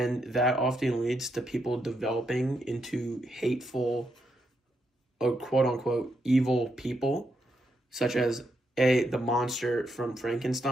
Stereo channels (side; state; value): both; normal; correlation 0.80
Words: that often leads to people developing into hateful or quote unquote evil people, such as the monster from